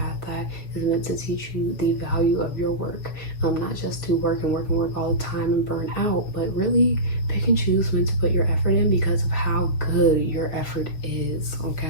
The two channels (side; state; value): right; late; 6.5 ms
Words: that is meant to teach you the value of your work, not just to work and work and work all the time and burn out, but really pick and choose when to put your effort in because of how good your effort is,